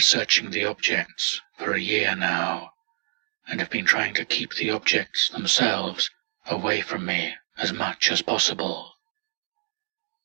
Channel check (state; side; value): silent; left; 58 dB below the other